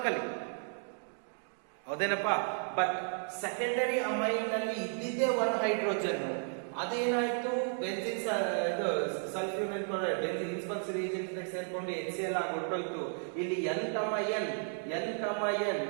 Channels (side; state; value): left; silent; 55 dB below the other